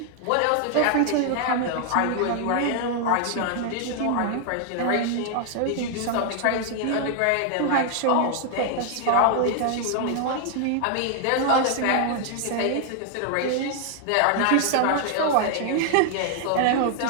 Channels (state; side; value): different; both; correlation 0.00